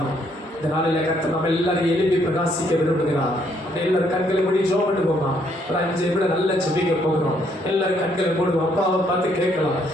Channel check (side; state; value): both; normal; correlation 0.70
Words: இந்த நாளில கர்த்தர் நம்ம எல்லாரும் எழுப்பி பிரகாசிக்க விரும்புகிறார். எல்லாரும் கண்களை மூடி ஜெபம் பண்ணுவோமா? ஒரு 5 நிமிடம் நல்லா ஜெபிக்க போகிறோம். எல்லாரும் கண்களை மூடுவோம். அப்பாவை பார்த்து கேட்கலாம்.